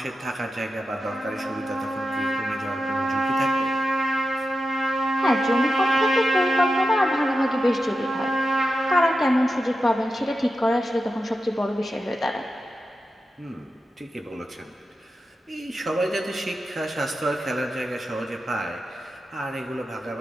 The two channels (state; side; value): normal; both; correlation 0.90